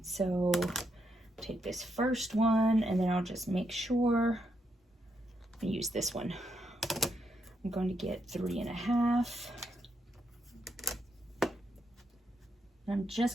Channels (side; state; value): both; normal; correlation 0.80